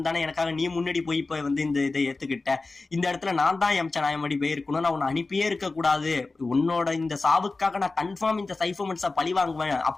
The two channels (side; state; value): right; quieter; 3.6 dB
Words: தானே எனக்காக நீ முன்னாடி போய் இப்ப வந்து இந்த இதை ஏத்துக்கிட்ட, இந்த இடத்துல நான் தான் யம்சா நான் எப்படி போயிருக்கணும், நான் உன்னை அனுப்பியே இருக்க கூடாது, உன்னோட இந்த சாவுக்காக நான் கன்ஃபார்ம் இந்த சைஃபமெண்ட்ஸை பழி வாங்குவேன்